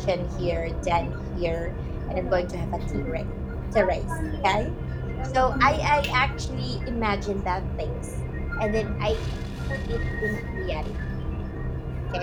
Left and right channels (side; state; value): both; identical; correlation 1.00